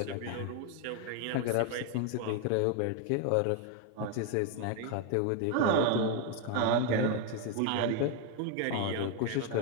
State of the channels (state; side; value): different; both; correlation 0.01